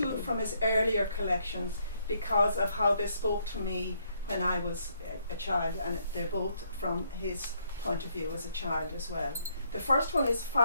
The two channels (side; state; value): both; inverted; correlation -0.72